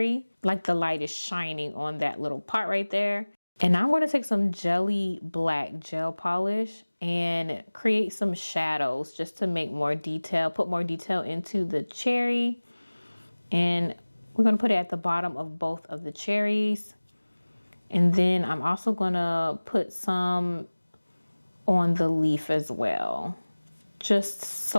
like the light is shining on that little part right there. And I'm gonna take some jelly black gel polish and create some shadows just to make more detail, put more detail into the cherry. And we're gonna put it at the bottom of both of the cherries. And then I'm also gonna put some on the leaf as well, just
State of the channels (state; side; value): inverted; both; correlation -1.00